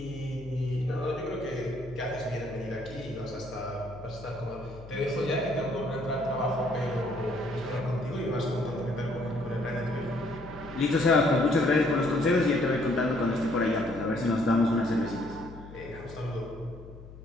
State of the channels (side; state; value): left; noise; hum, 16 dB below the sound